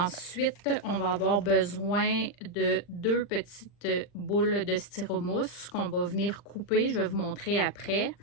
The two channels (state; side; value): late; right; 40 ms